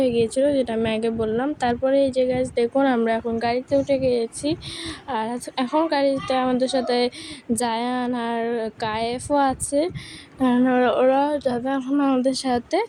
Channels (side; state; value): both; identical; correlation 1.00